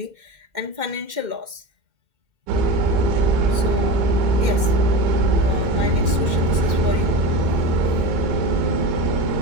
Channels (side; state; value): left; late; 2.1 ms